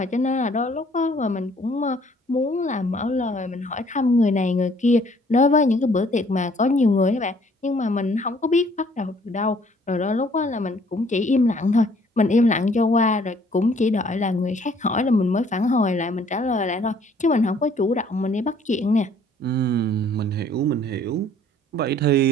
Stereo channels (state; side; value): normal; both; correlation 0.60